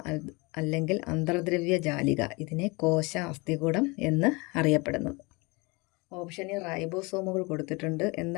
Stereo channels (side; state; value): right; quieter; 26.6 dB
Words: അല്ലെങ്കിൽ അന്തർദ്രവ്യ ജാലിക ഇതിനെ കോശ അസ്ഥികൂടം എന്ന് അറിയപ്പെടുന്നത്. ഓപ്ഷനിൽ റൈബോസോമുകൾ കൊടുത്തിട്ടുണ്ട്.